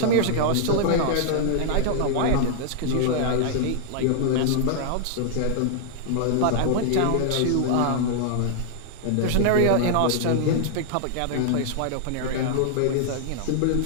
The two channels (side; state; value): both; different; correlation -0.01